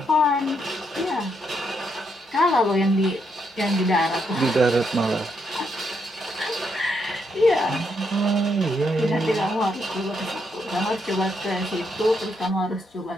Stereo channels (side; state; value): both; normal; correlation 0.77